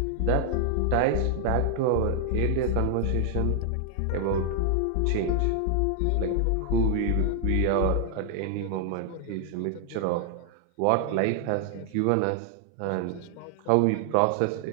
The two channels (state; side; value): different; both; correlation 0.00